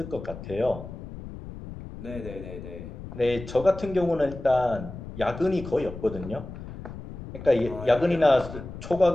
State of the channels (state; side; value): noise; left; rumble, 12 dB below the sound